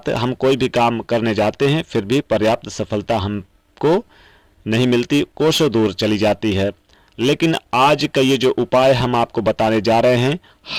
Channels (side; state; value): both; identical; correlation 1.00